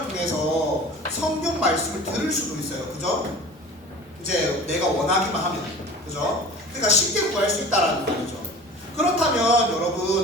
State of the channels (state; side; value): normal; both; correlation 0.41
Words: 통해서 성경 말씀을 들을 수도 있어요, 그죠? 이제 내가 원하기만 하면, 그죠? 그러니까 쉽게 구할 수 있다라는 말이죠. 그렇다면